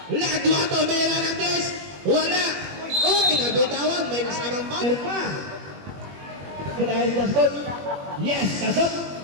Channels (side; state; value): left; late; 21 ms